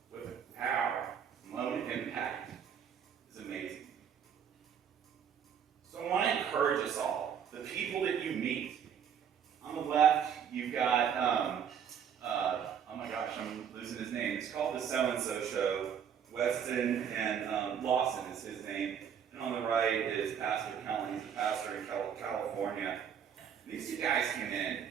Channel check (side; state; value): left; quieter; 8.1 dB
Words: with our lone impact is amazing. So I want to encourage us all, the people that you meet. On the left, you've got, oh my gosh, I'm losing his name. It's called the So-and-So Show. Weston and Lawson is his name. And on the right is Pastor Cullen. He's a pastor in California. These two guys came in,